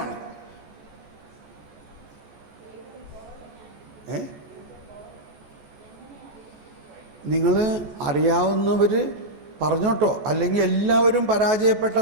നിങ്ങൾ അറിയാവുന്നവർ പറഞ്ഞോട്ടോ, അല്ലെങ്കിൽ എല്ലാവരും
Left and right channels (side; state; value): left; late; 14 ms